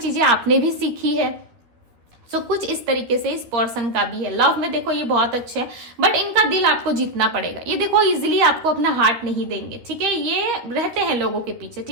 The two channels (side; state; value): left; late; 13 ms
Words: आपने भी सीखी है। सो कुछ इस तरीके से इस पर्सन का भी है। लव में देखो ये बहुत अच्छे है, बट इनका दिल आपको जीतना पड़ेगा। ये देखो इजीली आपको अपना हार्ट नहीं देंगे, ठीक है, ये रहते हैं लोगों के पीछे,